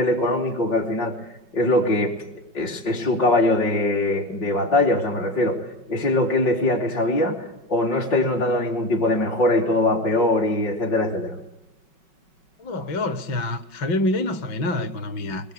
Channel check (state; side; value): late; right; 5.4 ms